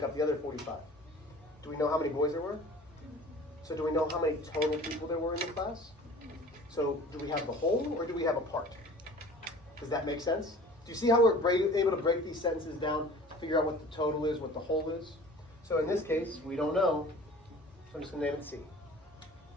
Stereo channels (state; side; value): normal; both; correlation 0.45